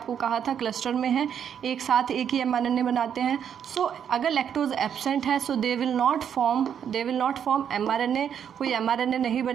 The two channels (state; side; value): quieter; left; 8.5 dB